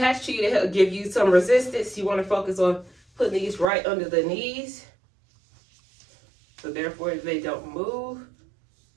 to you to help give you some resistance. You want to focus on putting these right under the knees, so therefore they don't move.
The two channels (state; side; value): drops out; left; at 3.7 s